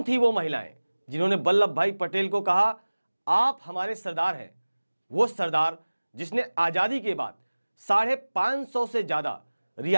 थी वो महिलाएं जिन्होंने वल्लभ भाई पटेल को कहा आप हमारे सरदार हैं? वो सरदार जिसने आजादी के बाद 550 से ज्यादा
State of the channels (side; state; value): both; inverted; correlation -1.00